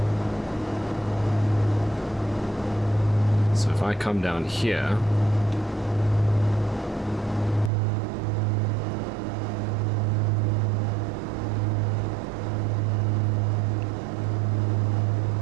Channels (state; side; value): drops out; left; at 7.7 s